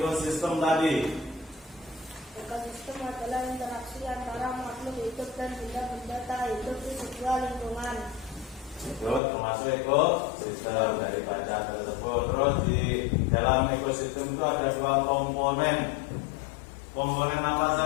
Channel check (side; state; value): right; drops out; at 9.2 s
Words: tadi? Ekosistem adalah interaksi antara makhluk hidup dan benda-benda tak hidup di sebuah lingkungan. Itu termasuk ekosistem dari baca tersebut. Terus di dalam ekosistem itu ada 2 komponen. Komponen apa